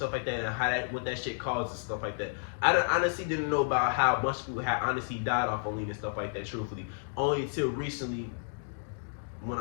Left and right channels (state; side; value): silent; right; digital silence